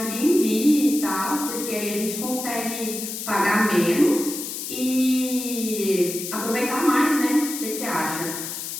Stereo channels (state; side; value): noise; left; hiss, 6 dB below the sound